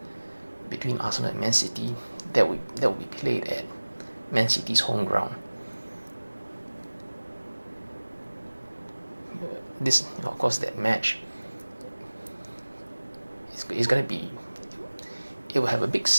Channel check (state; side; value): inverted; both; correlation -1.00